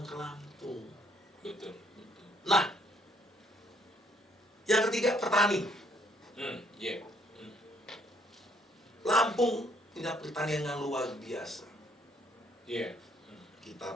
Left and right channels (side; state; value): both; normal; correlation 0.67